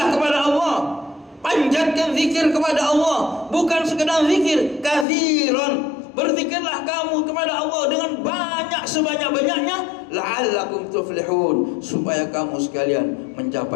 kepada Allah. Panjatkan zikir kepada Allah, bukan sekedar zikir, katsiran. Berzikirlah kamu kepada Allah dengan banyak, sebanyak-banyaknya, la'allakum tuflihun, supaya kamu sekalian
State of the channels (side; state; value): right; drops out; at 5.1 s